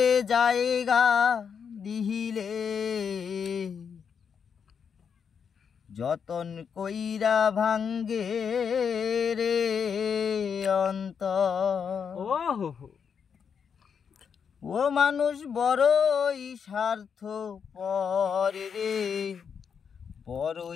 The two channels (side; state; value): right; quieter; 6.8 dB